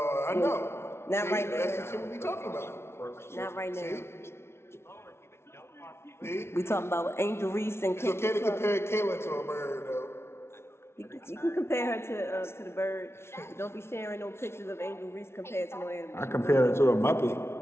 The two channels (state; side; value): late; right; 0.12 ms